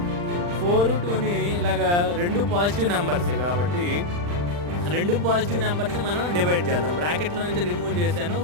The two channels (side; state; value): left; late; 40 ms